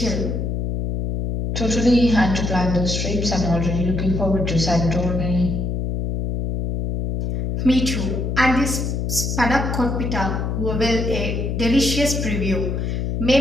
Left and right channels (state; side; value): noise; left; hum, 1 dB below the sound